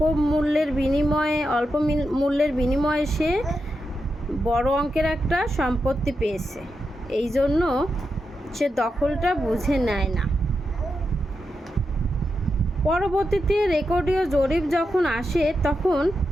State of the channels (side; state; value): both; normal; correlation 0.87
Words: কম মূল্যের বিনিময়ে, অল্প মূল্যের বিনিময়ে সে বড় অঙ্কের একটা সম্পত্তি পেয়েছে, এই জন্য সে দখলটা বুঝে নেয় না। পরবর্তীতে রেকর্ডীয় জরিপ যখন আসে তখন